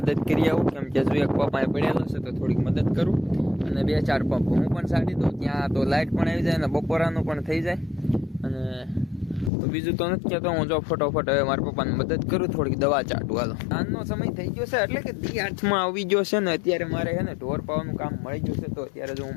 કરી આવું, કેમ કે જો એક પંપ અહીં પડેલો છે તો થોડીક મદદ કરું, અને 2-4 પંપ હું પણ છાંટી દઉં. ત્યાં તો લાઈટ પણ આવી જાય અને બપોરાનું પણ થઈ જાય. અને તો બીજું તો નથી કહેતો, હું જો ફટોફટ હવે મારા પપ્પાને મદદ કરું, થોડીક દવા ચાટું. હાલો, સાંજનો સમય થઈ ગયો છે, એટલે કે દી હાથમાં આવી ગયો છે ને અત્યારે મારે છે ને ઢોર પાવાનું કામ મળી ગયું છે. તો અત્યારે જો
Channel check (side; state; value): right; drops out; at 9.5 s